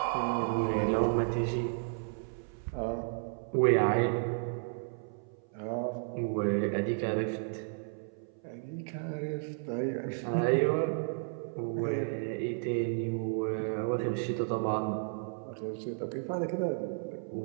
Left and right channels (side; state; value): left; silent; 56 dB below the other